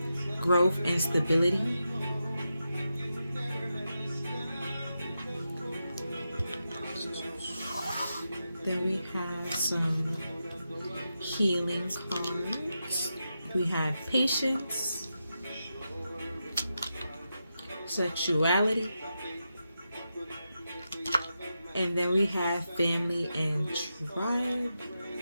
growth, and stability. Then we have some healing cards. We have patience, sexuality, and then we have family and tribe.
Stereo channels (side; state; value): both; inverted; correlation -0.88